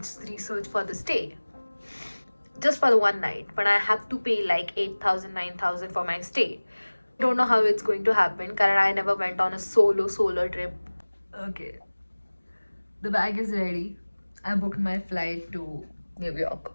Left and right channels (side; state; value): both; inverted; correlation -1.00